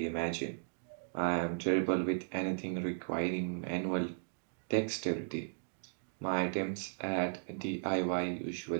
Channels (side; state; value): left; silent; digital silence